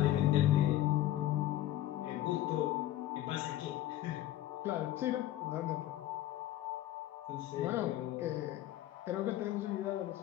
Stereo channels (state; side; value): quieter; right; 13.6 dB